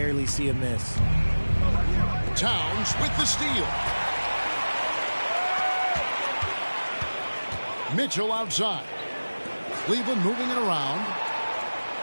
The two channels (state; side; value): inverted; both; correlation -1.00